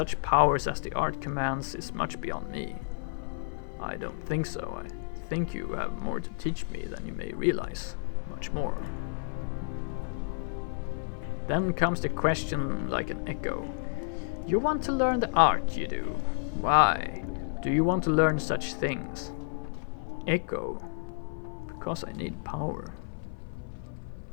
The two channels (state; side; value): silent; right; 57 dB below the other